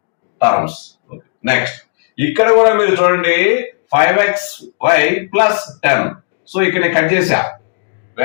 టర్మ్స్. నెక్స్ట్ ఇక్కడ కూడా మీరు చూడండి 5xy + 10. సో ఇక్కడ కట్ చేశా,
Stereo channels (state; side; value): silent; right; digital silence